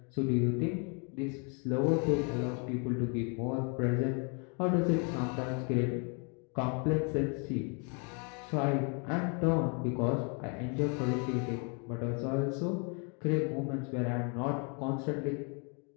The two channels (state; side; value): quieter; right; 36.1 dB